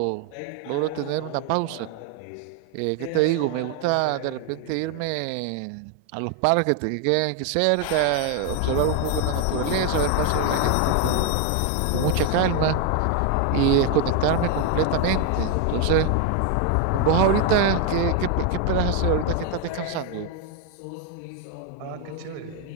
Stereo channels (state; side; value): different; both; correlation 0.01